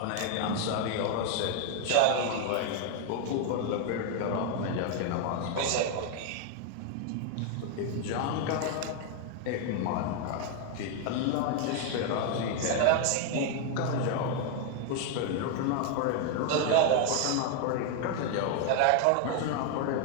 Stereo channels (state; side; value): different; both; correlation 0.00